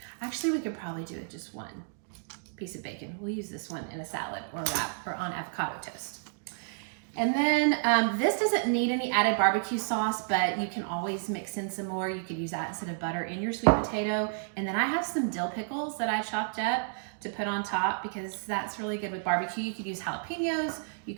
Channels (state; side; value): silent; left; digital silence